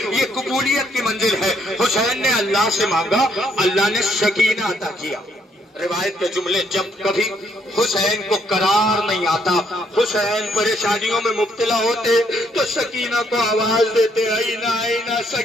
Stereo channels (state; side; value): normal; both; correlation 0.71